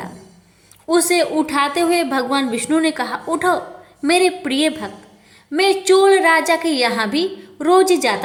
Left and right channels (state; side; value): identical; both; correlation 1.00